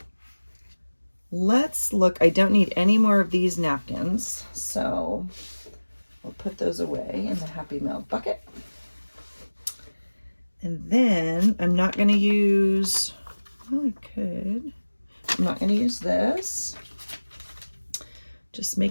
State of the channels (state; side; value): inverted; both; correlation -1.00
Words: Let's look. I don't need any more of these napkins, so we'll put those away in the Happy Mail bucket. And then I'm not going to use, well, I could. I'm not going to use this. Just